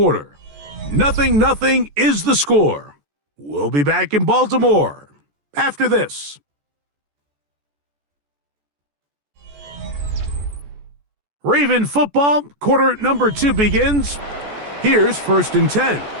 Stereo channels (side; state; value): left; late; 14 ms